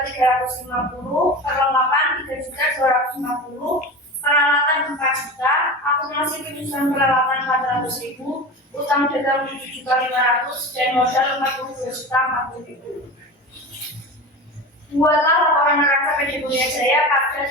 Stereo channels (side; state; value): both; normal; correlation 0.30